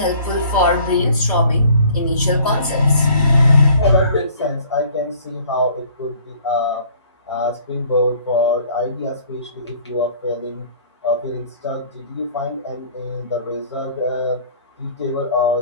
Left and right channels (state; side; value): inverted; both; correlation -0.53